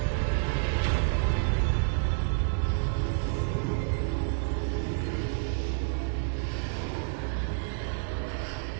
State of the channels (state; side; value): silent; left; digital silence